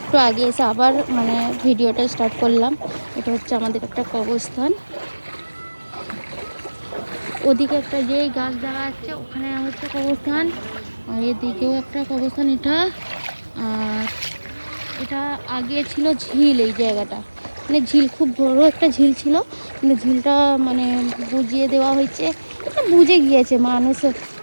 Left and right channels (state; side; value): inverted; both; correlation -1.00